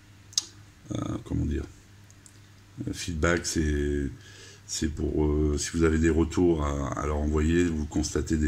comment dire, feedback, c'est pour si vous avez des retours à leur envoyer, vous constatez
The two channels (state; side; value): identical; both; correlation 1.00